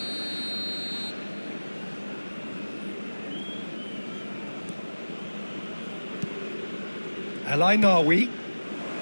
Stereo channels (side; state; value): both; inverted; correlation -1.00